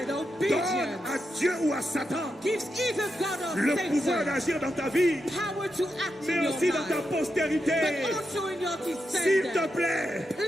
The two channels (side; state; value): both; normal; correlation 0.86